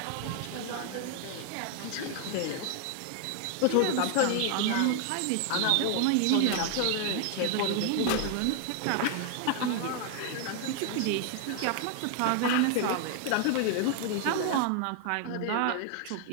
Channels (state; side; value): different; both; correlation 0.00